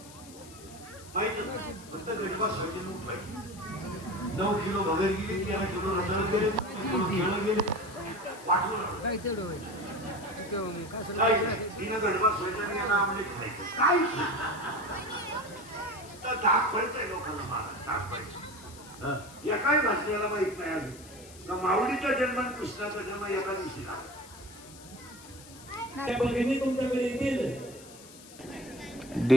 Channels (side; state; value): left; noise; hiss, 19 dB below the sound